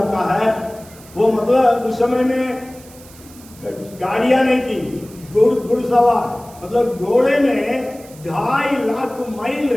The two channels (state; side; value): noise; right; hiss, 22 dB below the sound